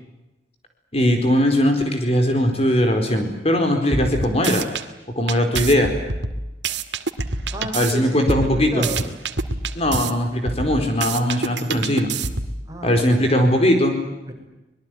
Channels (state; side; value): normal; both; correlation 0.64